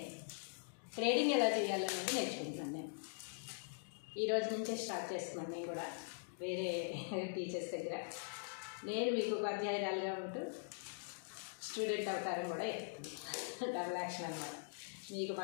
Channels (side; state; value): right; silent; digital silence